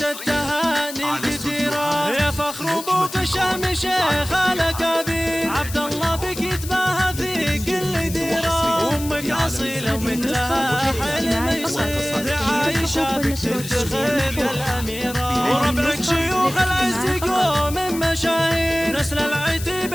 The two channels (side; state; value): left; noise; hiss, 11 dB below the sound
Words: التهاني الكثيرة. يا فخر أبوك الشام شيخ الأكابير، عبد الله بك يتباهى في كل ديرة. أمك أصيلة ومثلها حلم يصير، عايشة بك تفتخر يا الأميرة. وربعك شيوخ العز قوم مشاهير، نسل العتب